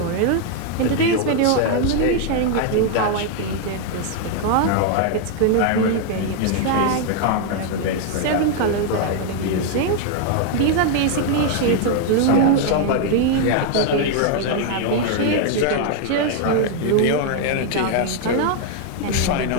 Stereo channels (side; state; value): both; different; correlation 0.00